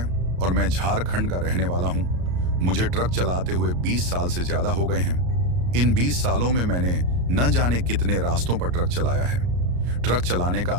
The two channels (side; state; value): left; late; 34 ms